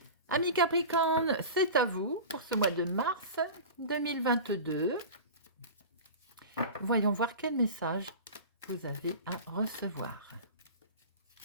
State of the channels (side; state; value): both; inverted; correlation -0.33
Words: Amis Capricorne, c'est à vous pour ce mois de mars 2022. Voyons voir quel message vous avez à recevoir.